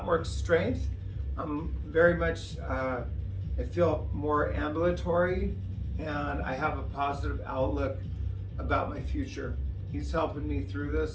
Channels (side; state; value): both; identical; correlation 1.00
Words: more strength. I'm very much, I feel more ambulatory, and I have a positive outlook about my future. He's helping me through